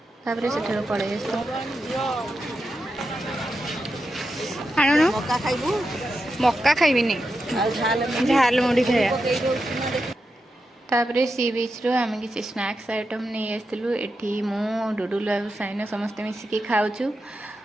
ତାପରେ ସେଠାରୁ ପଳେଇ ଆସିଲୁ। ଆଣୁନ ମକା ଖାଇବୁ ମକା ଖାଇବିନି, ଆଉ ଝାଲ ମୁଢ଼ି ଖାଇବା। ତାପରେ ସି ବିଚ୍ରୁ ଆମେ କିଛି ସ୍ନାକ୍ସ ଆଇଟମ୍ ନେଇ ଆସିଥିଲୁ। ଏଠି ମୁଁ ଡୁଡୁଲୁ ଆଉ ସାଇନା ସମସ୍ତେ ମିଶିକି ଖାଉଛୁ।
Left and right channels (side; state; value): both; normal; correlation 0.88